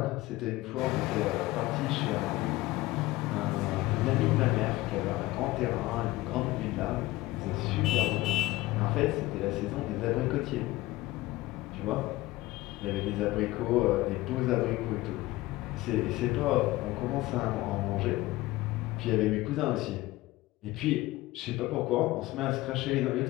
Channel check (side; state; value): right; quieter; 18.5 dB